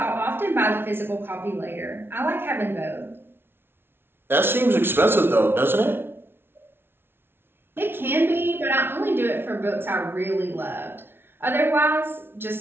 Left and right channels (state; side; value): late; left; 0.11 ms